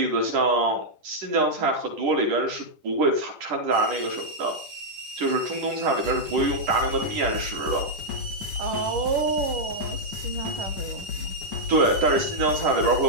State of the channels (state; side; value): late; left; 10 ms